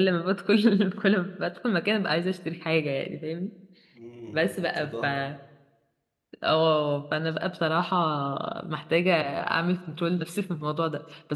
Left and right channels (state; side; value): identical; both; correlation 1.00